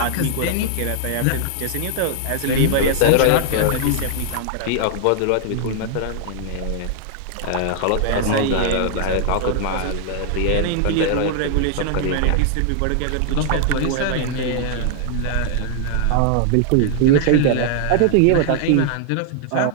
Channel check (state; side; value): different; both; correlation -0.01